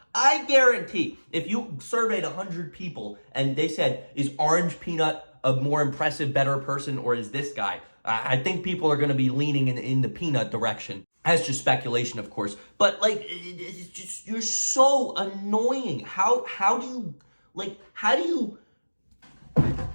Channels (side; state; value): both; inverted; correlation -1.00